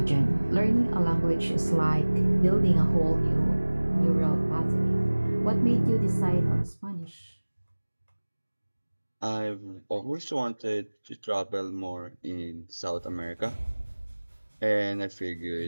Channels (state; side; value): inverted; both; correlation -1.00